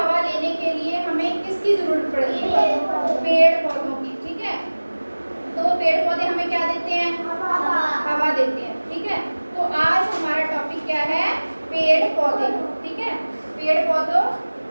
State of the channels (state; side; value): inverted; both; correlation -1.00